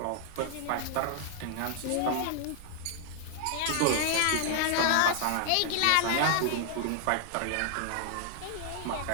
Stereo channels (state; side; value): different; both; correlation 0.00